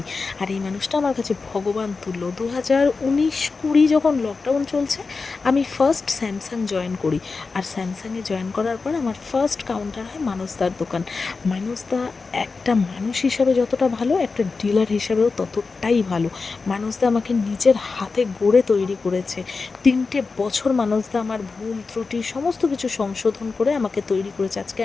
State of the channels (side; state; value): right; quieter; 4.3 dB